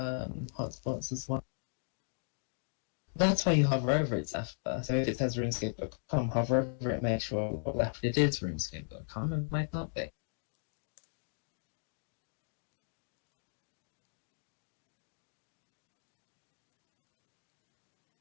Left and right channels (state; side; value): silent; right; digital silence